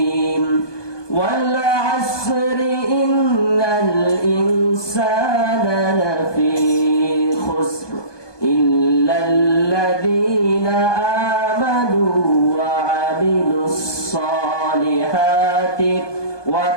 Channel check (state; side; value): late; right; 1.2 ms